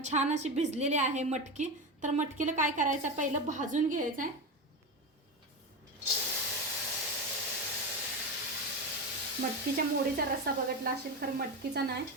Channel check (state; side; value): normal; both; correlation 0.20